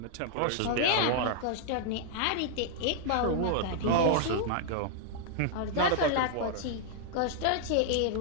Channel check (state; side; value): different; both; correlation 0.00